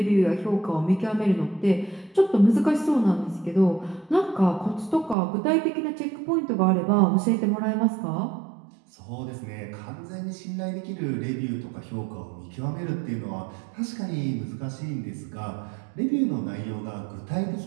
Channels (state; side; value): drops out; left; at 5.2 s